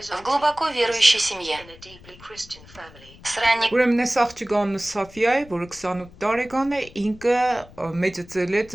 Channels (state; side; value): noise; left; rumble, 22 dB below the sound